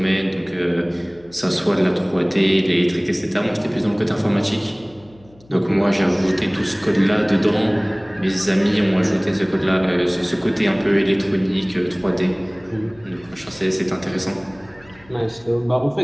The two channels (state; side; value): noise; left; hum, 27 dB below the sound